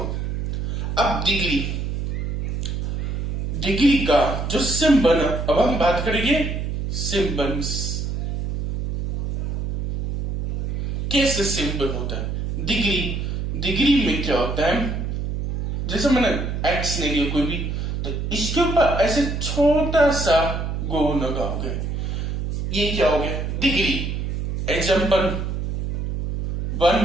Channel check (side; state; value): right; noise; hum, 3 dB below the sound